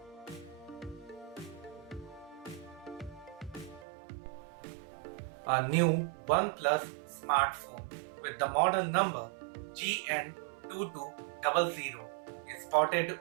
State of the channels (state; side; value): drops out; left; at 3.9 s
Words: A new OnePlus smartphone with the model number GN2200 is spotted